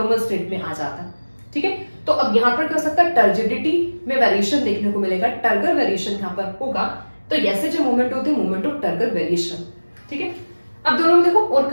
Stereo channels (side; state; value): both; inverted; correlation -1.00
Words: स्टेट में आ जाता है। ठीक है, तो अब यहाँ पर क्या हो सकता है, टर्जिडिटी में वेरिएशन देखने को मिलेगा, टर्गर वेरिएशन यहाँ पर होगा। तो ऐसे जो मूवमेंट होते हैं मूवमेंट ऑफ टर्गर वेरिएशन। ठीक है, अब दोनों में देखो और